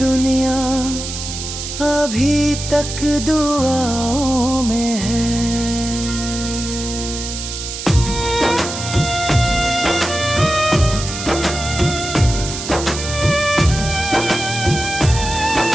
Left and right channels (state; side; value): noise; right; hiss, 7 dB below the sound